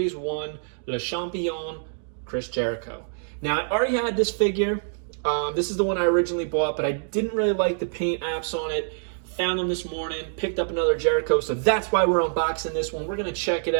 1 Le Champion Chris Jericho. Now, I already had this figure. This is the one I originally bought, but I didn't really like the paint apps on it. Found them this morning, picked up another Jericho, so that's why we're unboxing this one. We're going to check it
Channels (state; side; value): silent; left; digital silence